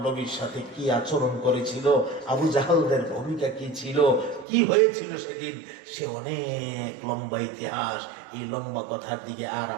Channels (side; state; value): left; drops out; at 4.5 s